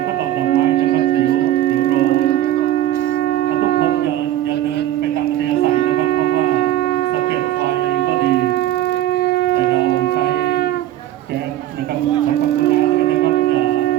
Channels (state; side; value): quieter; left; 13.2 dB